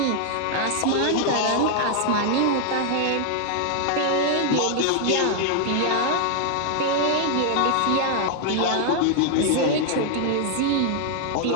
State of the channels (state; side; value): different; both; correlation 0.00